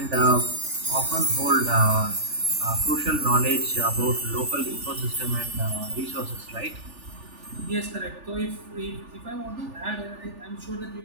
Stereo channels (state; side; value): late; left; 3.4 ms